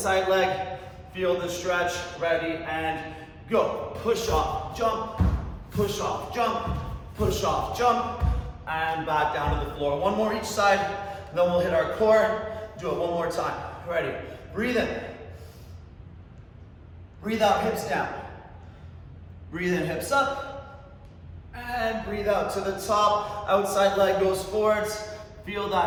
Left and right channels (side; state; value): both; identical; correlation 1.00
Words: leg. Feel the stretch, ready, and go. Push off, jump, push off, jump, push off, jump, and back down to the floor. One more each side, then we'll hit our core. Do it one more time. Ready, breathe in. Breathe out, hips down. Breathe in, hips up, and breathe out to the top. Outside leg goes forwards. Feel